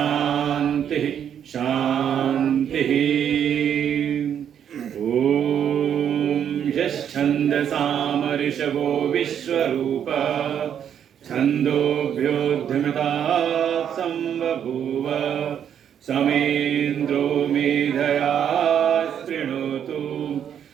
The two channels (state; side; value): quieter; left; 8.9 dB